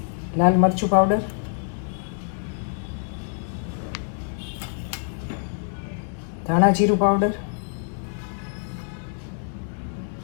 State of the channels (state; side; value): silent; right; 61 dB below the other